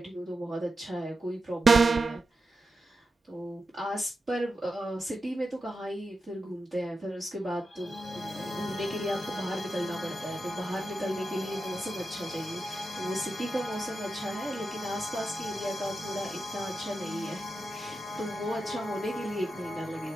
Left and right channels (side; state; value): both; normal; correlation 0.90